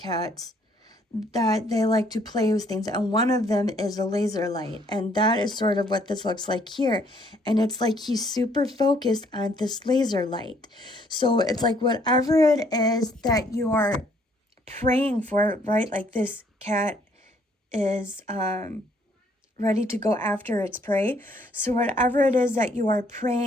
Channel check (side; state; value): both; normal; correlation 0.65